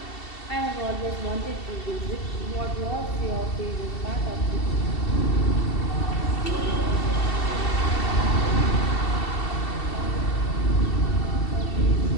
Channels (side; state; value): right; late; 2.7 ms